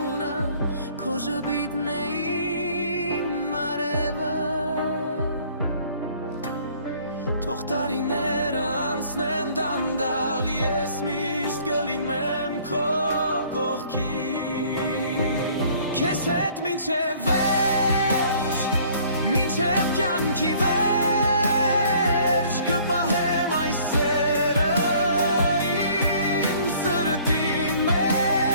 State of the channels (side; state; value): both; inverted; correlation -0.56